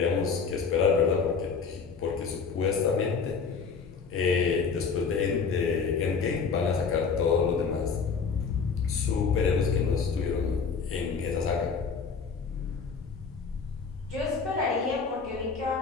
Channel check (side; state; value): right; quieter; 5.4 dB